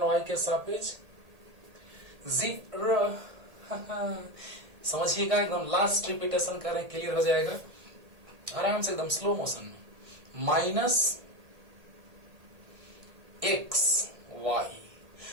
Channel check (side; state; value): left; late; 1.8 ms